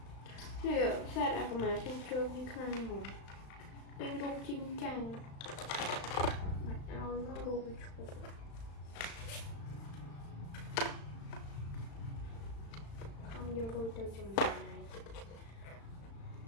nè xe đã có mà trơn như khăn rồi đang rung chinh chang mặt áo nó rung chụp không vô đôi từ trong này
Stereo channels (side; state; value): right; late; 35 ms